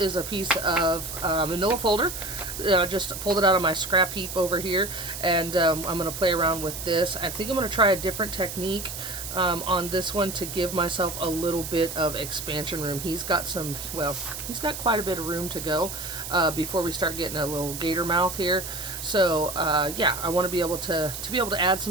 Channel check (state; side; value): noise; right; hiss, 8 dB below the sound